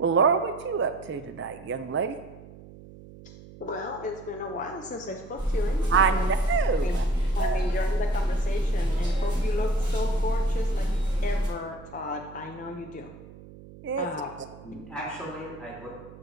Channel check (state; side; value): noise; right; hum, 18 dB below the sound